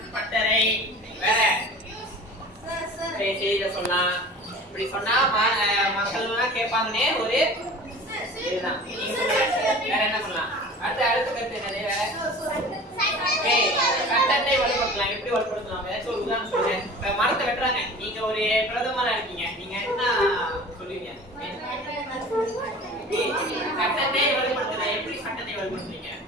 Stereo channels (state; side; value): normal; both; correlation 0.40